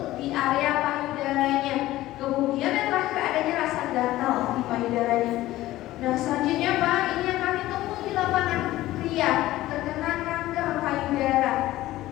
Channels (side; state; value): right; quieter; 16.0 dB